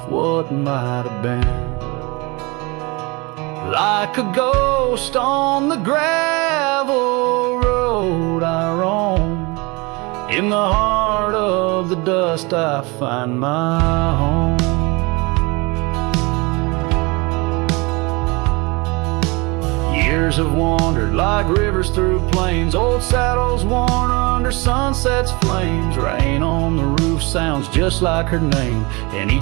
what might have been. Like a ghost on the gravel road I roam, in the heart of the dust I find my home. Years have wandered like rivers through plains, old saddles worn under sunset's flames. Rain on the roof sounds just like her name, in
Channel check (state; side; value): quieter; left; 26.5 dB